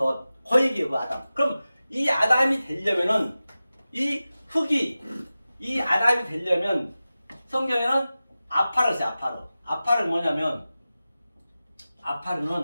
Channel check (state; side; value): inverted; both; correlation -0.95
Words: 그 얘기예요. 그 아담. 그럼 이 아담이 되려면은 이 흙이 이 아담이 되려면 성경에는 아파를 써요. 아파를 뭐냐면